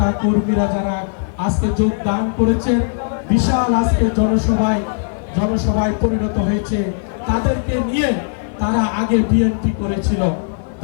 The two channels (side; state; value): right; silent; 60 dB below the other